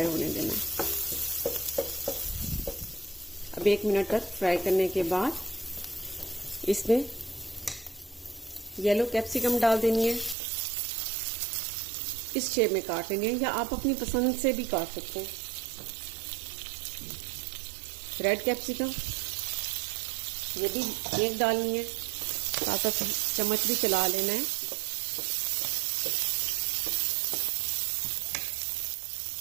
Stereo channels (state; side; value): drops out; left; at 10.4 s